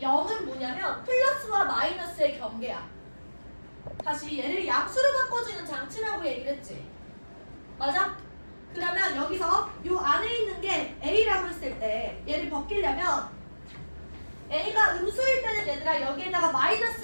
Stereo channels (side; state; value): both; inverted; correlation -1.00